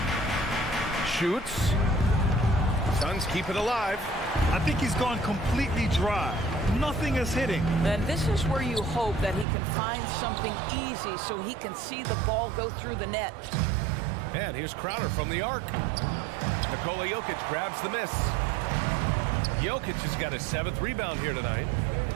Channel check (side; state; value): left; drops out; at 9.5 s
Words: Shoots. Suns keep it alive. I think he's gone completely dry. Nothing is hitting. And this is where you hope that he can find something easy so he can see the ball go through the net. And here's Crowder from the arc. Nikola Jokic grabs the miss. Jokic has got his 7th rebound here tonight.